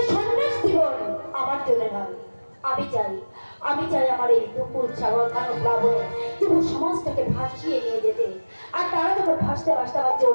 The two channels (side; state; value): both; inverted; correlation -1.00